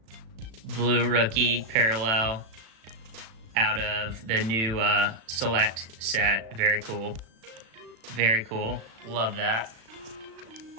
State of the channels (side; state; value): left; late; 36 ms